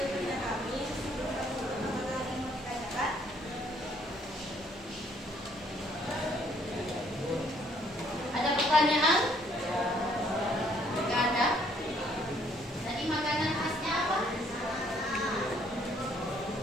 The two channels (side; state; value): both; normal; correlation 0.65